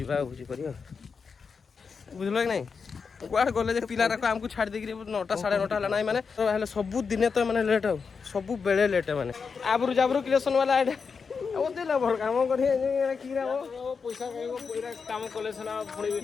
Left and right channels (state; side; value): quieter; right; 5.5 dB